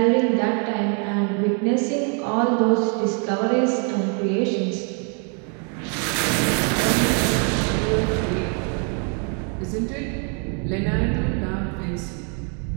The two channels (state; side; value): quieter; left; 39.1 dB